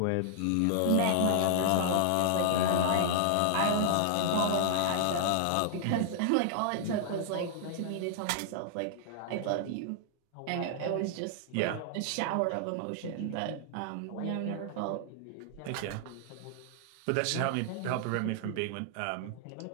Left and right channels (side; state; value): both; different; correlation -0.01